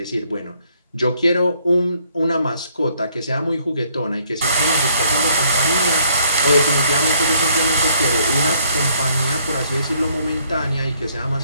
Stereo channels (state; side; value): inverted; both; correlation -0.66